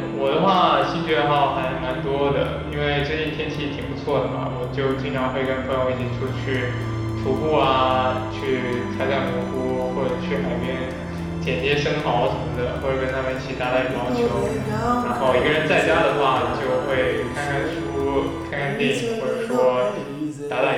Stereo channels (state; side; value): identical; both; correlation 1.00